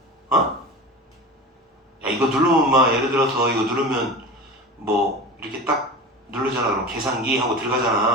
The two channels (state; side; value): normal; both; correlation 0.31